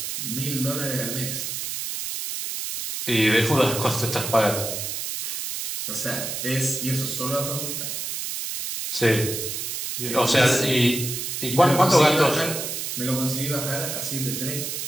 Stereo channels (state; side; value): noise; right; hiss, 4 dB below the sound